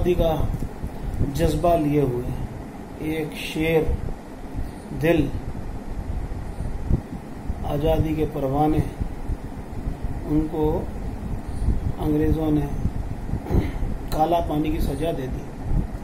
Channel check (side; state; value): both; identical; correlation 1.00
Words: का जज्बा लिए हुए एक शेर दिल, आज़ादी के परवाने, उनको अंग्रेज़ों ने काला पानी की सजा दे दी